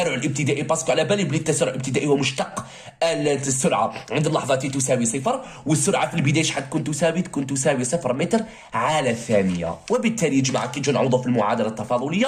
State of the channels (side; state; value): both; identical; correlation 1.00